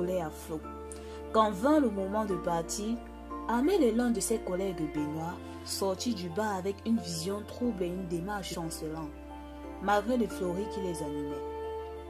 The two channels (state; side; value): identical; both; correlation 1.00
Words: à flot. Quand vint le moment de partir, Amel et l'un de ses collègues Benoît sortit du bar avec une vision trouble et une démarche chancelante, malgré les fleuris qui les animaient.